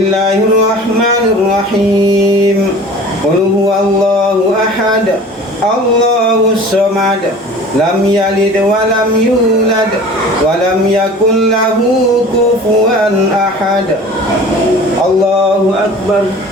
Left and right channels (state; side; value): normal; both; correlation 0.42